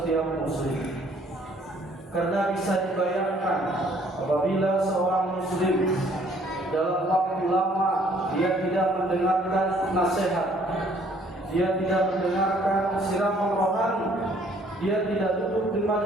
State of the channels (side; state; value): both; normal; correlation 0.61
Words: muslim. Karena bisa dibayangkan apabila seorang muslim dalam waktu lama dia tidak mendengarkan nasihat, dia tidak mendengarkan siraman rohani, dia tidak duduk di